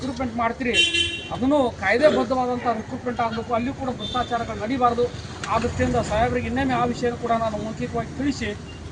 ಮಾಡ್ತೀರಿ ಅದನ್ನು ಕಾಯ್ದೆಬದ್ಧವಾದಂಥ ರಿಕ್ರೂಟ್ಮೆಂಟ್ ಆಗಬೇಕು, ಅಲ್ಲಿ ಕೂಡ ಭ್ರಷ್ಟಾಚಾರಗಳು ನಡೀಬಾರ್ದು. ಆ ದೃಷ್ಟಿಯಿಂದ ಸಾಹೇಬರಿಗೆ ಇನ್ನೊಮ್ಮೆ ಆ ವಿಷಯ ಕೂಡ ನಾನು ಮೌಖಿಕವಾಗಿ ತಿಳಿಸಿ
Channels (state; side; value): identical; both; correlation 1.00